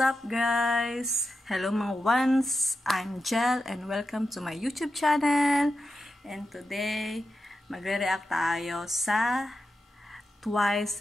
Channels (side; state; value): both; normal; correlation 0.89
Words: guys? Hello mga ones! I'm Jel and welcome to my YouTube channel. And today, magre-react tayo sa